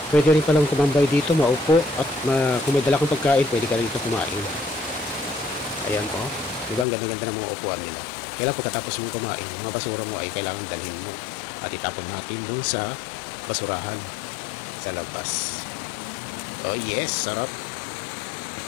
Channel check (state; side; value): drops out; right; at 6.9 s